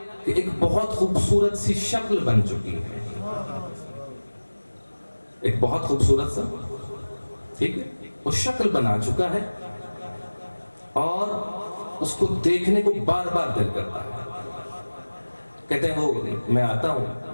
کہ ایک بہت خوبصورت سی شکل بن چکی ہے، ایک بہت خوبصورت سا، ٹھیک ہے، وہ شکل بنا چکا ہے اور اس کو دیکھنے کو بار بار دل کرتا ہے. کہتے ہیں وہ میں آتا ہوں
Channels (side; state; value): both; inverted; correlation -1.00